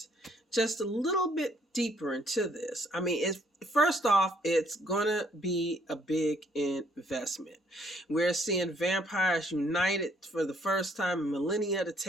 just a little bit deeper into this. I mean, first off, it's gonna be a big investment. We're seeing vampires united for the first time in millennia to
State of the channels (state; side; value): normal; both; correlation 0.66